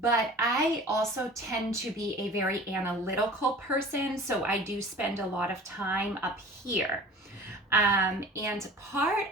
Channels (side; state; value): both; normal; correlation 0.42